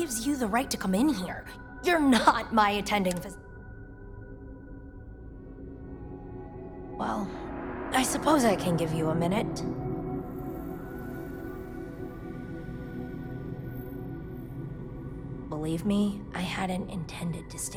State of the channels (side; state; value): both; identical; correlation 1.00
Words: you the right to come in here? You're not my attending Well, I suppose I can give you a minute. Believe me, I hadn't intended to